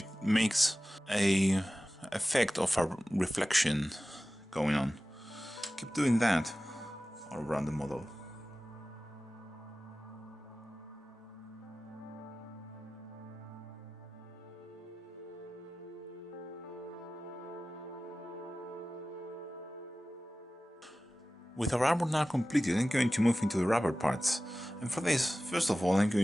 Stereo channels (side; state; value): both; normal; correlation 0.96